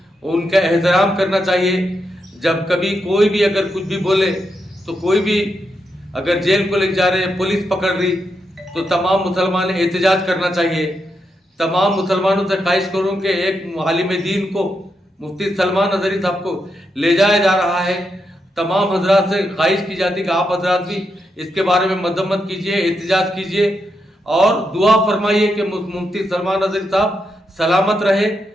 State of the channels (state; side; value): normal; both; correlation 0.83